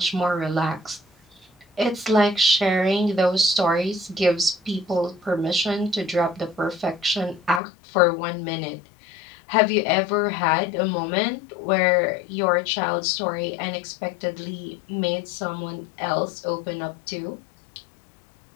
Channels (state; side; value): drops out; right; at 7.6 s